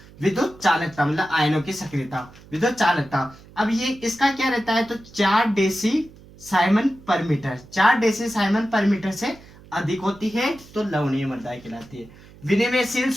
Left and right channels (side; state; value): right; noise; hum, 22 dB below the sound